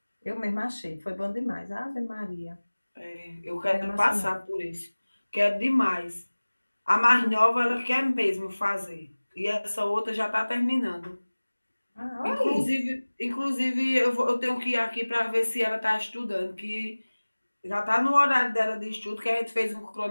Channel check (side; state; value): both; inverted; correlation -1.00